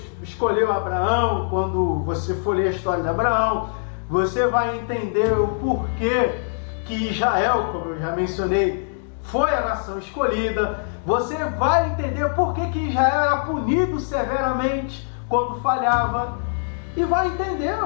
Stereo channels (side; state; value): right; silent; digital silence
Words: escolheu Abraão. Quando você for ler a história de Abraão, você vai entender o porquê que Israel, como eu já mencionei, foi a nação escolhida. Você vai entender por que Israel era punido severamente quando falhava. E vai entender,